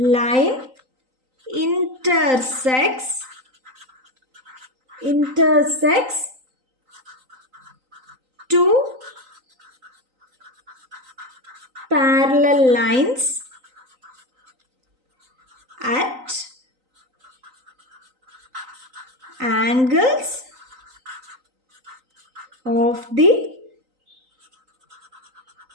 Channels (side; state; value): left; late; 3.9 ms